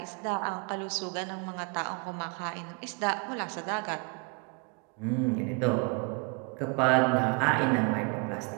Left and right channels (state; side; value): quieter; left; 33.4 dB